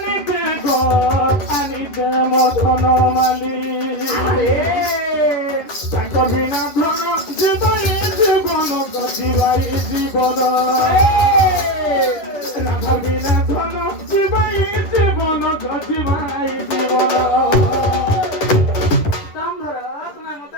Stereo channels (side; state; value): right; late; 10 ms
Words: গো আনিতে মধন মালি কবিনা ধন জীবনে জীবন গতিবাই জীবন রাধবিনা ধন জীবাই জীবন গতিবাই জীবন দাম ধরো তোমার মাথা